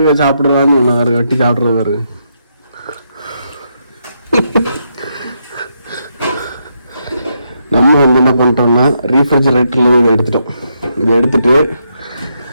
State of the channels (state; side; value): inverted; both; correlation -0.80